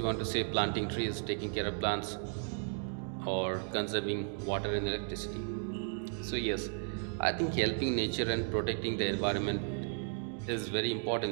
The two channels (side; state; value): left; silent; 55 dB below the other